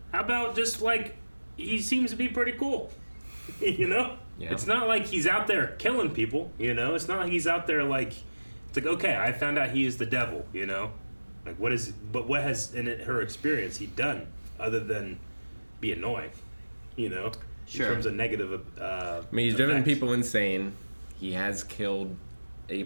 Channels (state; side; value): inverted; both; correlation -1.00